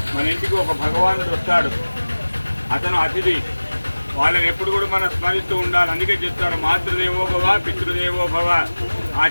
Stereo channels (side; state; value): both; inverted; correlation -1.00